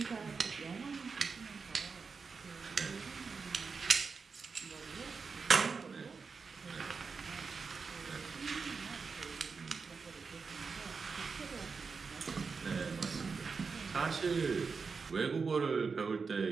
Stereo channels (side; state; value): left; quieter; 5.0 dB